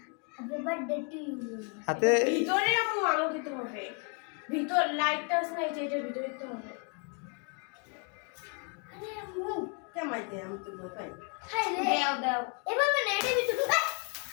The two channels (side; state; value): right; quieter; 37.9 dB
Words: happy birthday to you হাতে ভিতরে আম্মু আলো দিতে হবে ভিতর লাইটটা আছে না এটার ভিতরে দিতে হবে আরে আম্মু কেমাই দে আমি তো ভয় পাই হাই রে দাও দাও এভাবে না এটা ভিতরে